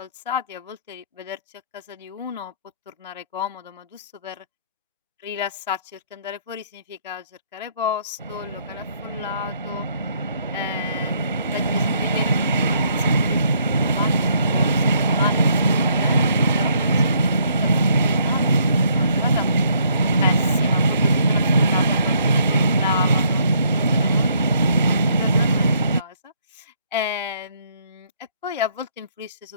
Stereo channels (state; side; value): inverted; both; correlation -0.68